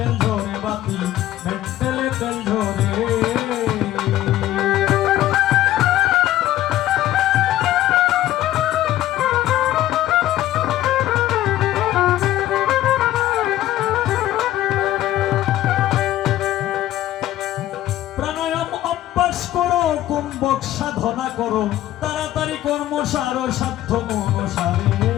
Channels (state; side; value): quieter; right; 13.9 dB